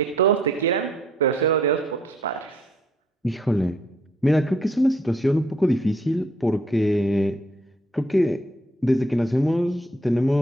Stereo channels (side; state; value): both; normal; correlation 0.66